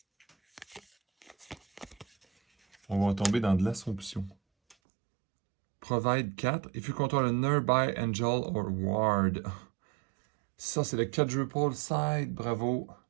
on va tomber dans de l'assomption. Provide 4. If you control a nearby angel or ward. Ça, c'est le quadruple side. Bravo.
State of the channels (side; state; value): left; drops out; at 4.8 s